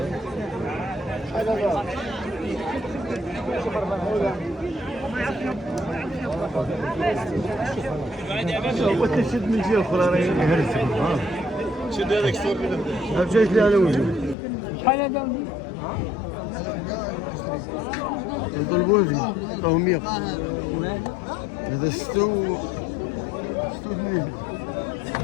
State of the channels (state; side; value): drops out; right; at 14.4 s